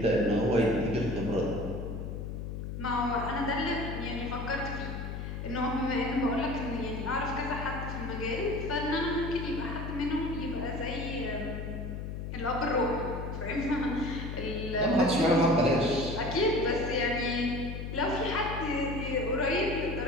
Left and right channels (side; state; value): left; noise; hum, 6 dB below the sound